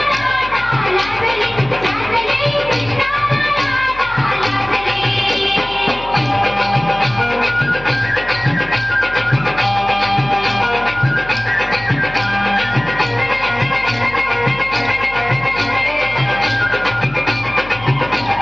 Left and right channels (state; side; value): noise; left; hum, 16 dB below the sound